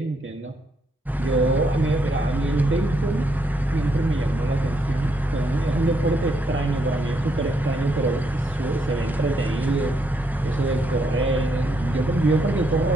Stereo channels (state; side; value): normal; both; correlation 0.76